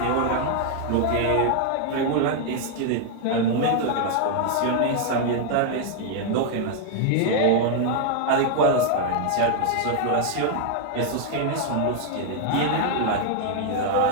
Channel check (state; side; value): different; both; correlation 0.00